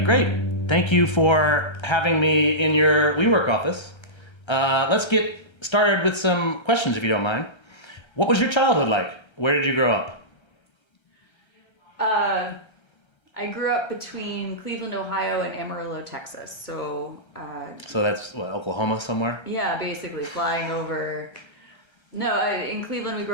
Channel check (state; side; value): late; right; 1.3 ms